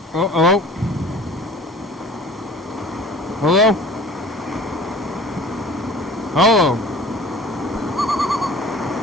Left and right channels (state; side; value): normal; both; correlation 0.46